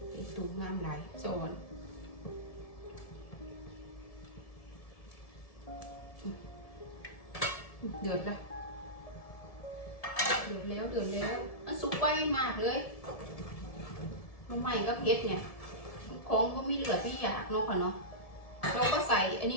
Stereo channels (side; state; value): right; late; 1.7 ms